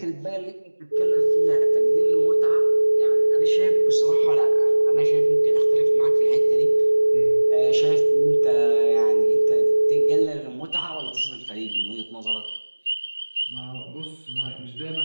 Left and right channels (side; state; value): both; inverted; correlation -1.00